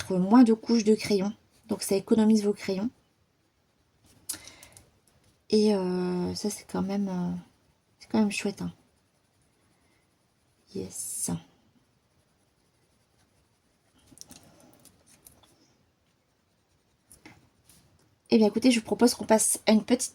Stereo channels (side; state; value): both; identical; correlation 1.00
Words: moins de couches de crayon. Donc ça économise vos crayons. Et ça, c'est quand même chouette, hein. Yes. Eh bien, écoutez, je vous propose qu'on passe à une